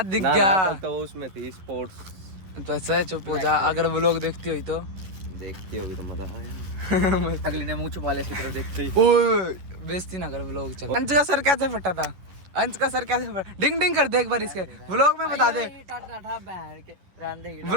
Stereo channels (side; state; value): left; late; 11 ms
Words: दिख गया तो उसमें थी स्पोर्ट्स। तो ऐसा चुप हो जा, अगर व्लॉग देखती हुई तो देखती होगी तो मजा आया। अगली ने मुंह छुपा ले तो देखती। ओए बेइज्जती ना कर व्लॉग चल। अंश का सर कैसे फटा था? अंश का सर कैसे फटा? डिंग डिंग कर दे एक बार इसके व्लॉग में बता दे।